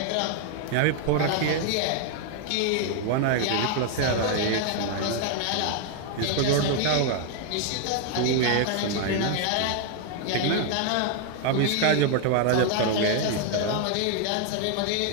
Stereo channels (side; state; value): both; different; correlation 0.00